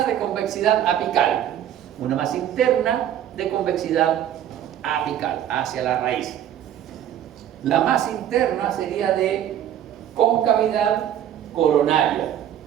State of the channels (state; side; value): quieter; left; 10.7 dB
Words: de convexidad apical. Una más interna de convexidad apical, hacia la raíz. La más interna sería de concavidad coronaria.